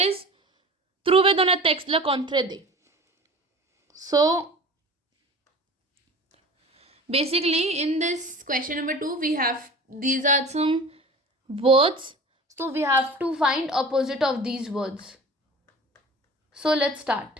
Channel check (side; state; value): both; normal; correlation 0.39